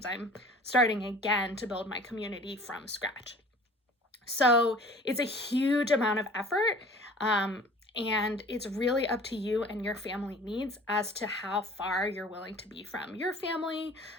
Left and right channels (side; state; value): both; normal; correlation 0.46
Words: I'm starting again to build my community from scratch. So it's a huge amount of effort. And it's really up to you and your family needs as to how far you're willing to be from your family,